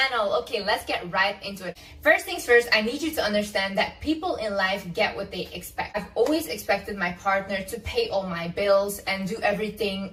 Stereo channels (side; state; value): both; identical; correlation 1.00